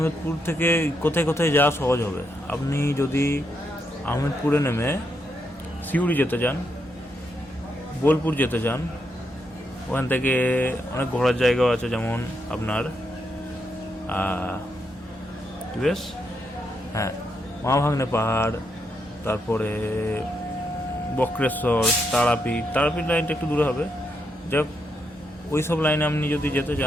থেকে কোথায় কোথায় যাওয়া সহজ হবে, আপনি যদি আহমেদপুরে নেমে সিউড়ি যেতে চান, বোলপুর যেতে চান, ওখান থেকে অনেক ঘোরার জায়গাও আছে, যেমন আপনার বেশ মহাভাগ্নে পাহাড়, তারপরে বক্রেশ্বর, তারাপীঠ লাইনটা একটু দূরে হবে। যাক, ওই সব লাইনে আপনি যদি যেতে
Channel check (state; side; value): normal; both; correlation 0.80